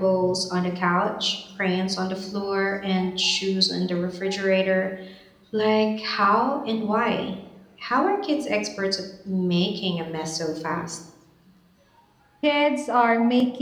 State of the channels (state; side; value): identical; both; correlation 1.00